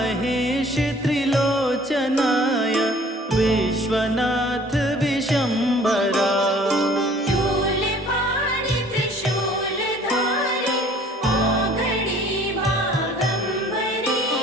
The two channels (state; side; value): normal; both; correlation 0.53